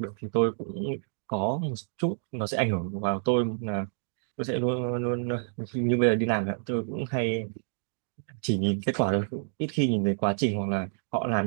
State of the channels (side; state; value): left; silent; digital silence